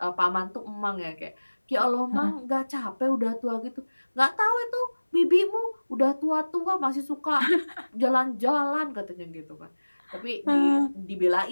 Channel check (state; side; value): inverted; both; correlation -1.00